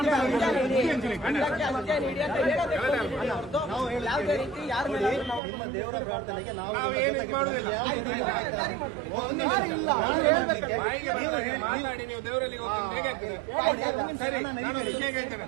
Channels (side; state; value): left; drops out; at 5.4 s